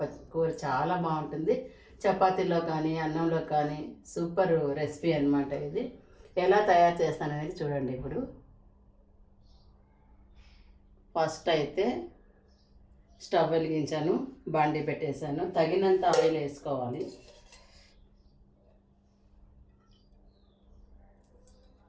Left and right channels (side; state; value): both; identical; correlation 1.00